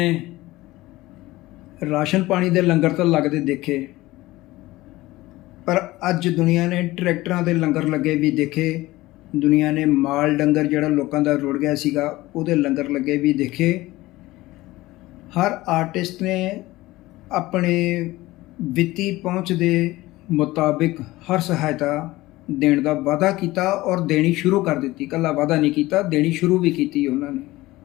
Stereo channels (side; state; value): right; quieter; 18.5 dB